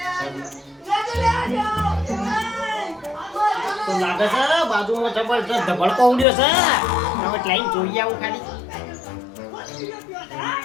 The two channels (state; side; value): drops out; right; at 6.2 s